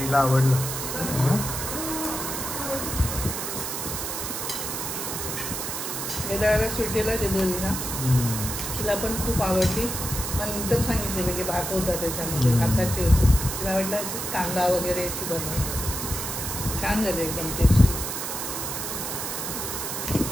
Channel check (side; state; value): right; noise; hiss, 4 dB below the sound